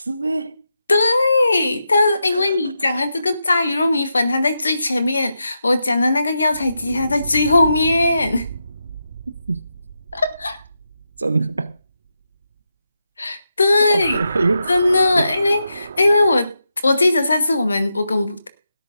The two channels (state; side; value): inverted; both; correlation -0.86